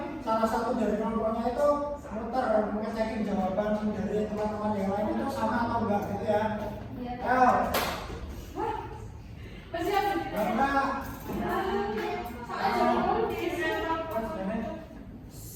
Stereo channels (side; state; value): both; identical; correlation 1.00